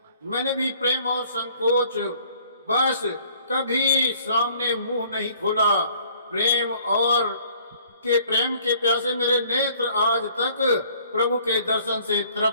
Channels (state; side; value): inverted; both; correlation -0.57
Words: मैंने भी प्रेम और संकोच बस कभी सामने मुंह नहीं खोला। प्रेम के प्यासे मेरे नेत्र आज तक प्रभु के दर्शन से